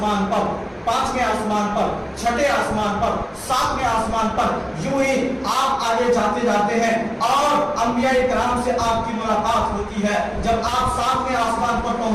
پر, پانچویں آسمان پر, چھٹے آسمان پر, ساتویں آسمان پر. یوں ہی آپ آگے جاتے جاتے ہیں اور انبیاء کرام سے آپ کی ملاقات ہوتی ہے. جب آپ ساتویں آسمان پر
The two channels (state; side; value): identical; both; correlation 1.00